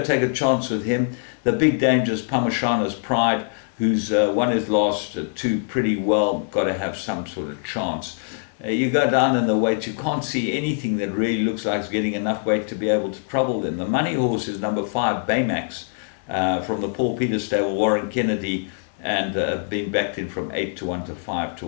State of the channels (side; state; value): right; silent; 63 dB below the other